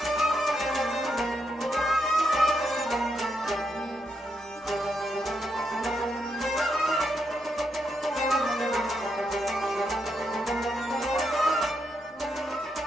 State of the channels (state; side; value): normal; both; correlation 0.80